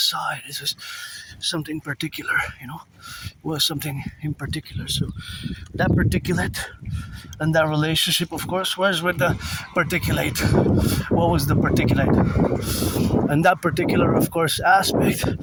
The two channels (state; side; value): identical; both; correlation 1.00